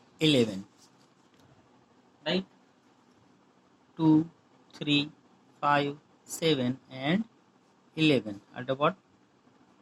11, right. 2, 3, 5, 7 and 11 are the what?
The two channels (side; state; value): both; identical; correlation 1.00